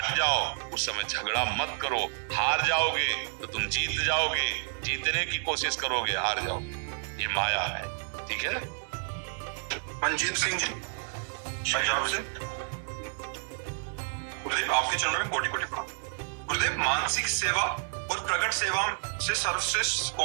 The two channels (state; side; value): silent; left; 58 dB below the other